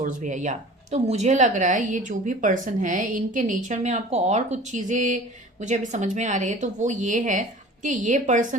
भी है या, तो मुझे लग रहा है ये जो भी पर्सन है इनके नेचर में आपको और कुछ चीजें मुझे अभी समझ में आ रही है। तो वो ये है कि ये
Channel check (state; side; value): normal; both; correlation 0.43